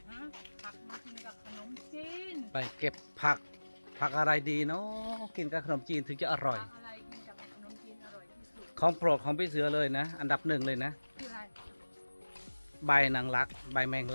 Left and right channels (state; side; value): inverted; both; correlation -1.00